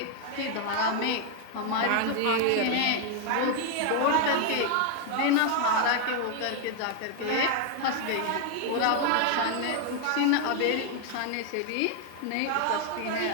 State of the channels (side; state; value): both; different; correlation 0.00